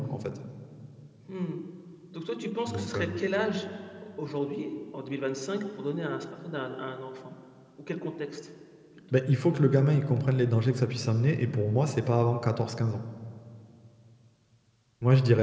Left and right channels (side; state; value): both; identical; correlation 1.00